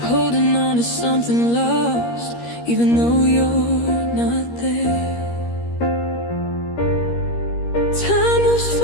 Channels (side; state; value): right; late; 13 ms